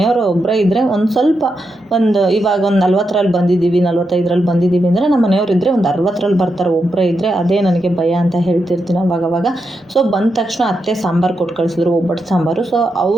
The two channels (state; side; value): normal; both; correlation 0.85